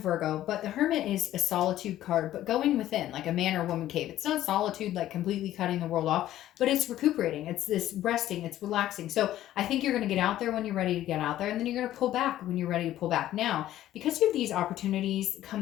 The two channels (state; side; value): quieter; right; 13.3 dB